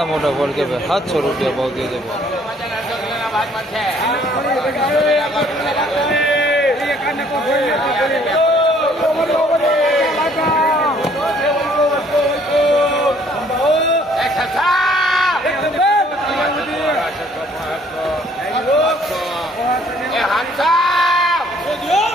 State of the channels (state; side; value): normal; both; correlation 0.61